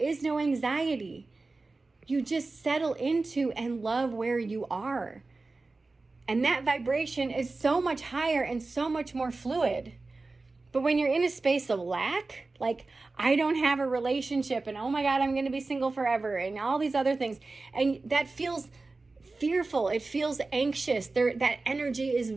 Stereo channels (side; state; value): left; quieter; 3.5 dB